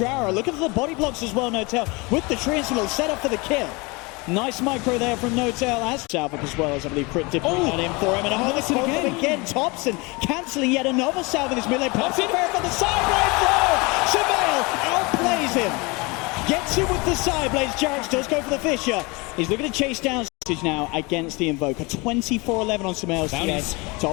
Look at the body blocks as well, No-Tail, with the Triangle set up for the kill. Nice micro there from No-Tail as Salvik as well, as I believe Crit did bring that in for him. And a this again. Thompson cancelling yet another salve in this melee. Pops it fair for the side throw. Surveil outplays him. Gets him with the side blades. Jarrett does go for the fissure. He's looking to chase down now against the Invoker. 24-11 on Surveil's TA.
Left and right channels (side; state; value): right; quieter; 26.6 dB